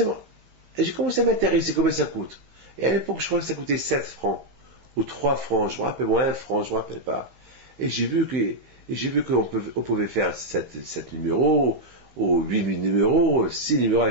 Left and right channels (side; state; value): left; late; 16 ms